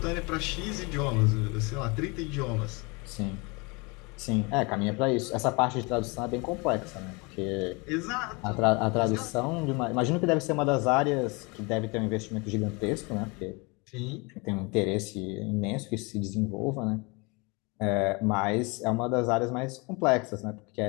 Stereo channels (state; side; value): quieter; right; 28.6 dB